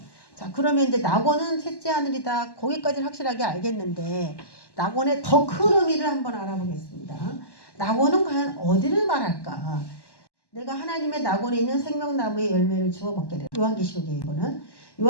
자, 그러면 이제 낙원은 셋째 하늘이다. 거기까지는 확실하게 알겠는데 낙원의 더 큰 의미를 한번 알아보겠습니다. 낙원은 과연 어디를 말할까? 내가 하나님의 낙원에 있는 생명나무의 열매를 주워 먹게 돼요. 요한계시록에 이거는.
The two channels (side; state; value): right; late; 1.1 ms